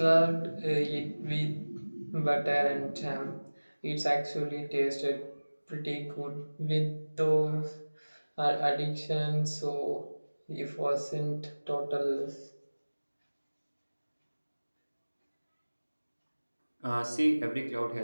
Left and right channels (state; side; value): inverted; both; correlation -1.00